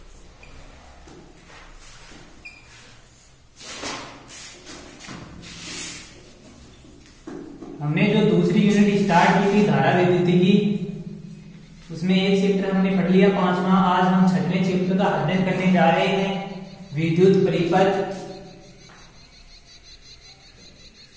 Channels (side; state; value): both; identical; correlation 1.00